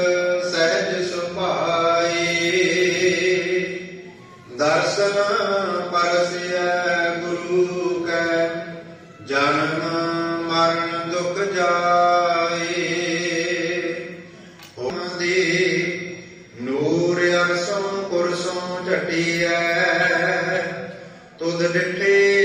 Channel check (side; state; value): both; identical; correlation 1.00